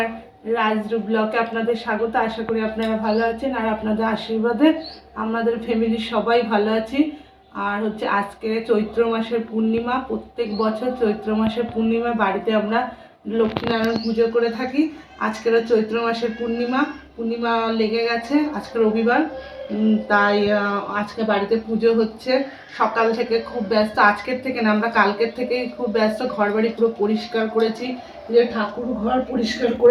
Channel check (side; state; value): both; identical; correlation 1.00